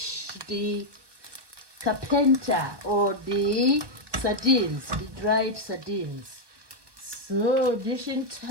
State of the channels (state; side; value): late; left; 1.2 ms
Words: the carpenter, or the sardines, the dried sardines. So dishing